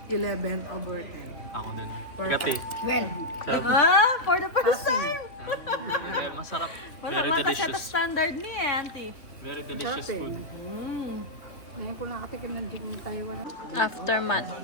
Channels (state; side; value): late; right; 3.0 ms